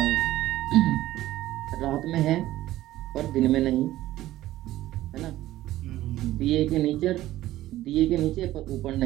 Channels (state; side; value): quieter; left; 15.1 dB